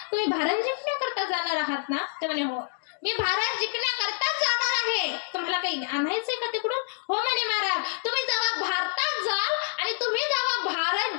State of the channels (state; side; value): silent; right; 60 dB below the other